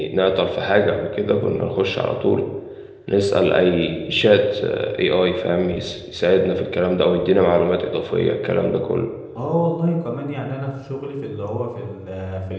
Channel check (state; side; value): identical; both; correlation 1.00